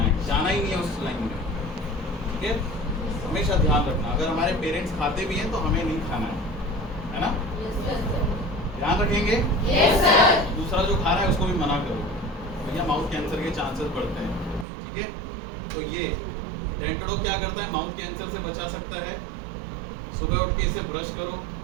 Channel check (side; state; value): left; drops out; at 14.7 s